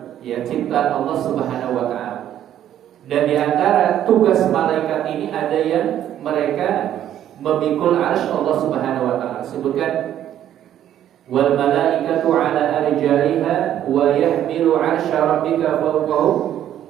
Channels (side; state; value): left; quieter; 11.2 dB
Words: ya, ciptaan Allah Subhanahu wa taala. Dan di antara tugas malaikat ini ada yang mereka memikul arsy Allah Subhanahu wa taala. Sebutkan wal malaikatu ala arjaiha wa yahmilu arsya rabbika fawqahum